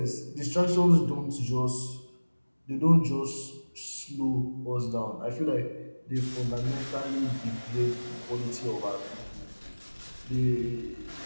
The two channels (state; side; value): inverted; both; correlation -1.00